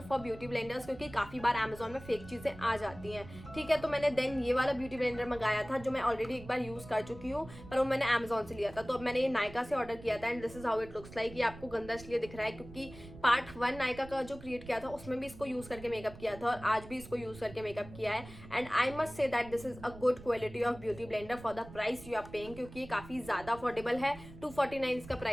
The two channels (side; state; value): right; noise; rumble, 16 dB below the sound